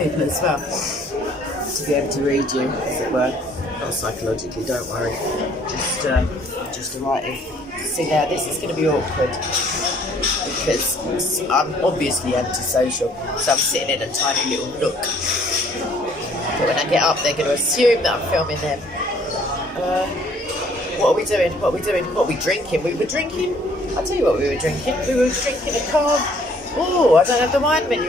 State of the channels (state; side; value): normal; both; correlation 0.60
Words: as well, to be able to read you, as it were. Not psychologically, don't worry. Just a writing. See, now this is going to be awkward because I'm obviously antisocial, so I'm sitting in a tiny little nook. But when I get up, they're going to assume that I'm filming them. What are we doing? What are we drinking? We were drinking. I'll tell you what we were drinking. We were drinking a carb. Oh, I don't have the wine